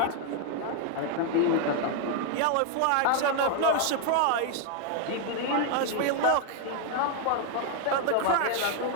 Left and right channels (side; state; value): both; different; correlation 0.00